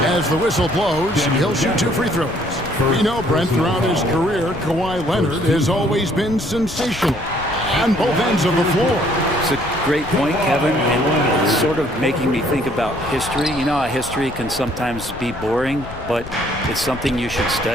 as the whistle blows. He'll shoot 2 free throws. We know, Brent, throughout his career, Kawhi Leonard has always been sensational on both ends of the floor. It's a great point, Kevin, and it's sort of making me think about history. You know how history can sometimes be boring, but it's something you should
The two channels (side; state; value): left; noise; rumble, 13 dB below the sound